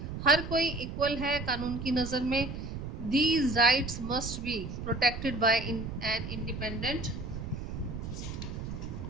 हर कोई इक्वल है कानून की नज़र में। These rights must be protected by an independent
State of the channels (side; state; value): right; noise; rumble, 7 dB below the sound